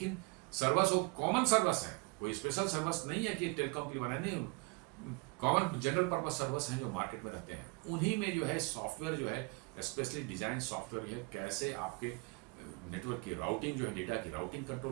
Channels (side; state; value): left; quieter; 29.3 dB